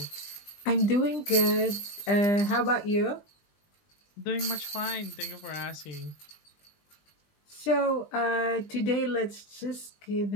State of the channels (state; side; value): late; right; 20 ms